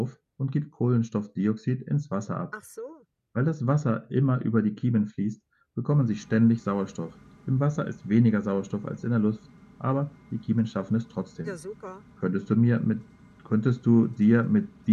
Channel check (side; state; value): both; identical; correlation 1.00